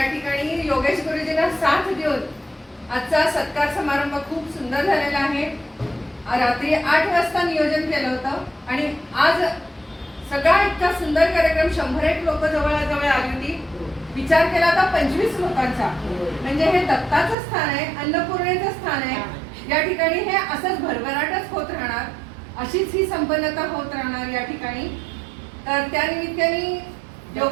ठिकाणी योगेश गुरुजींना साथ देऊन आजचा सत्कार समारंभ खूप सुंदर झालेला आहे। रात्री 8 वाजता नियोजन केलं होतं आणि आज सगळा इतका सुंदर कार्यक्रम 101 लोक जवळजवळ आली होती। विचार केला तर 25 लोकांचा, म्हणजे हे दत्ताचं स्थान आहे, अन्नपूर्णेचं स्थान आहे। या ठिकाणी हे असंच भरभराटच होत राहणार, अशीच ही संपन्नता होत राहणार या ठिकाणी। तर त्या निमित्ताने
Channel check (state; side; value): drops out; left; at 17.4 s